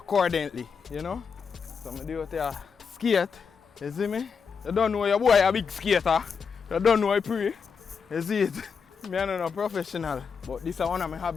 you know? So I do it here, skate, you see me? You don't know your boy a big skater. You don't know I pray. You see it? I'm not a professional, but this is one of my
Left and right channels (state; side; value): quieter; right; 5.9 dB